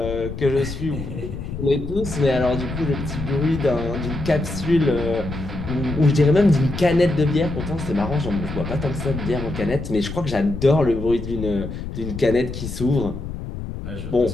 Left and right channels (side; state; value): left; noise; rumble, 7 dB below the sound